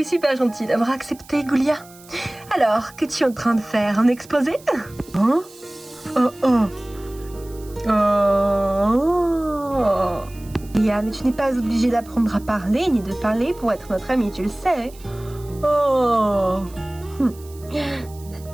es super gentil d'avoir accepté, Goulia. Alors, qu'es-tu en train de faire? Un exposé? Hein? Oh oh. Oh. Goulia, mais tu n'es pas obligée d'apprendre à parler ni de parler pour être notre amie, tu le sais. Oh.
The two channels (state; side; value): noise; right; hiss, 23 dB below the sound